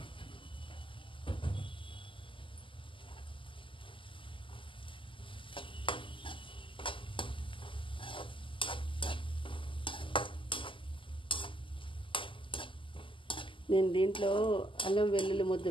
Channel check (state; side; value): late; right; 0.25 ms